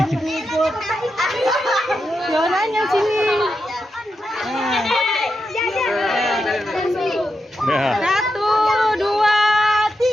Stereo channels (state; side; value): normal; both; correlation 0.87